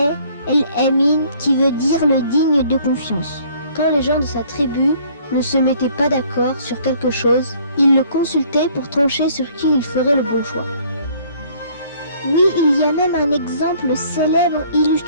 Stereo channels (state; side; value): inverted; both; correlation -0.58